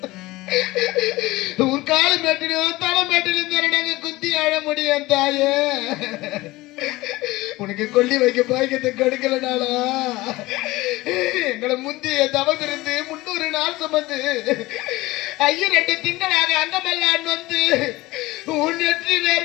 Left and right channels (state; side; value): quieter; right; 19.6 dB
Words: உன் காலு மேட்டிலும் தலை மேட்டிலும் நாங்க குத்தி அழ முடியும் தாயே. உனக்கு கொல்லி வைக்க பாய்க்கத்தை கொடுக்கலனாலா எங்களை முந்திய தவம் இருந்து 300 நாள் சுமந்து 2 திங்களாக அங்கமெல்லாம் வந்து உன் நெற்றி